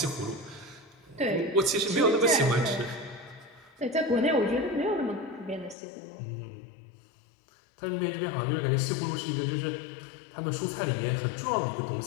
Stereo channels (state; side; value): drops out; right; at 5.8 s